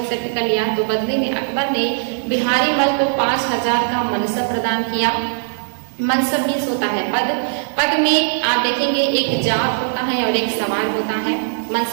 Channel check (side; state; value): left; silent; 62 dB below the other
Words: कर लिया तो बदले में अकबर ने बिहारी मल को 5000 का मनसब प्रदान किया। मनसब मीन्स होता है पद। पद में आप देखेंगे एक जात होता है और एक सवार होता है।